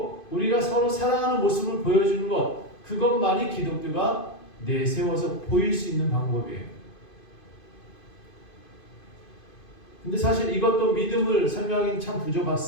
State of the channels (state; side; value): late; right; 2.5 ms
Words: 우리가 서로 사랑하는 모습을 보여주는 것, 그것만이 기독교가 내세워서 보일 수 있는 방법이에요. 근데 사실 이것도 믿음을 설명하기는 참